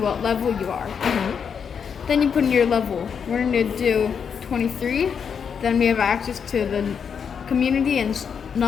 level you are. Mm-hmm. Then you put in your level. We're going to do 23. Then we have access to the community and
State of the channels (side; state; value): right; quieter; 6.9 dB